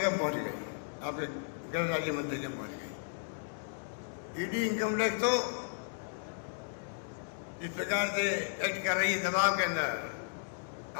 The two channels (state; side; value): silent; right; digital silence